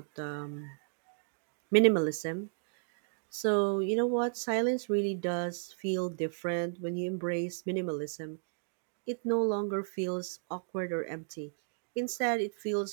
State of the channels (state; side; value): silent; left; digital silence